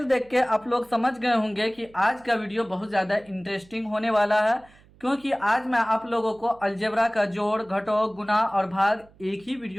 देख के आप लोग समझ गए होंगे कि आज का वीडियो बहुत ज़्यादा इंटरेस्टिंग होने वाला है। क्योंकि आज मैं आप लोगों को अलजेब्रा का जोड़, घटाव, गुणा और भाग एक ही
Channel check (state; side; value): noise; right; hum, 27 dB below the sound